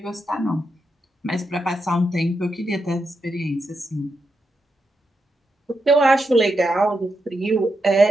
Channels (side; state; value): both; normal; correlation 0.85